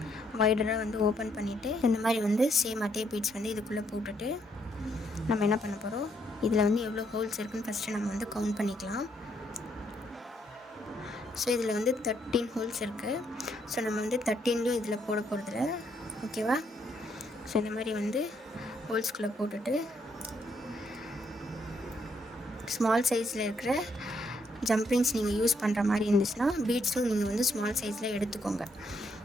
வைடராக வந்து ஓப்பன் பண்ணிவிட்டு இந்த மாதிரி வந்து சேம் அதே பீட்ஸ் வந்து இதுக்குள்ளே போட்டுட்டு நம்ம என்ன பண்ண போகிறோம், இதில் வந்து எவ்வளோ ஹோல்ஸ் இருக்குதுன்னு ஃபஸ்ட்டு நம்ம வந்து கவுண்ட் பண்ணிக்கலாம். ஸோ இதில் வந்து 13 ஹோல்ஸ் இருக்குது. ஸோ நம்ம வந்து 13லையும் இதில் போட போகிறதில்ல. ஓகேவா? ஸோ இந்த மாதிரி வந்து ஹோல்ஸ்குள்ளே போட்டுட்டு ஸ்மால் சைஸில் இருக்கிற ஜம்ப்ரிங்ஸ் நீங்கள் யூஸ் பண்ணுற மாதிரி இருந்துச்சுன்னா பீட்ஸும் நீங்கள் வந்து ஸ்மால் சைஸில் எடுத்துக்கோங்க.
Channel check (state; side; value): normal; both; correlation 0.73